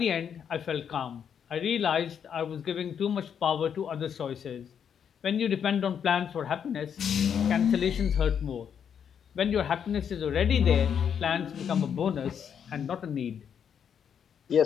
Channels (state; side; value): quieter; right; 7.9 dB